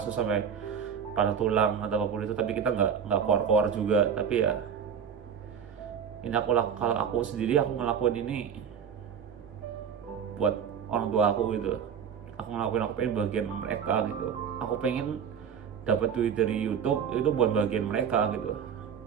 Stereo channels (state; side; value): quieter; left; 7.5 dB